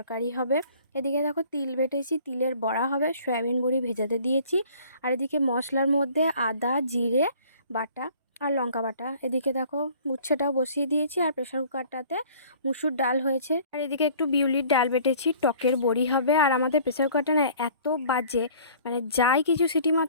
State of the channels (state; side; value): inverted; both; correlation -0.52